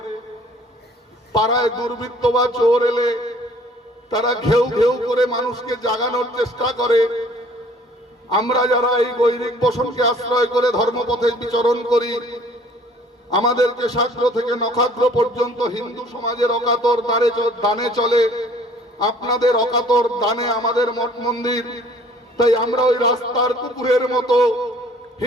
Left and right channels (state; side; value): normal; both; correlation 0.54